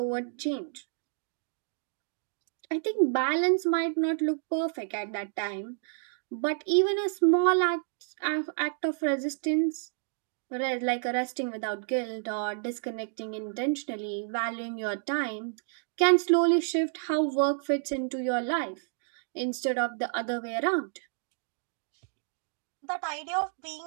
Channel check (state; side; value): silent; left; digital silence